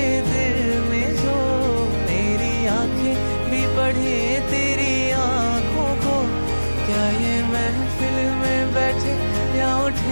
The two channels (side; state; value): both; inverted; correlation -1.00